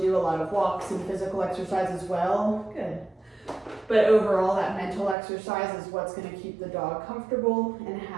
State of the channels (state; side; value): drops out; left; at 5.2 s